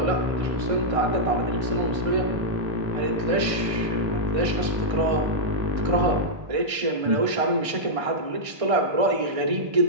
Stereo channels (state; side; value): late; left; 1.6 ms